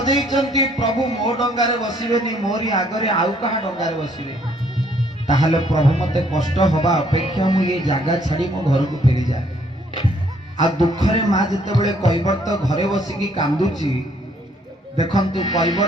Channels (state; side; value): normal; both; correlation 0.65